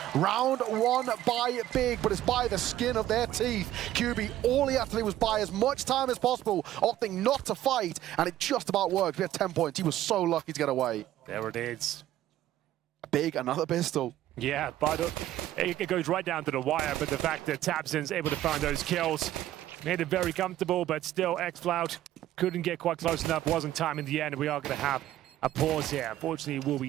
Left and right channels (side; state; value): left; quieter; 13.5 dB